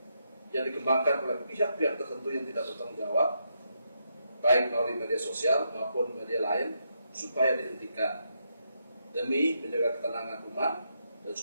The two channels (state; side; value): inverted; both; correlation -0.80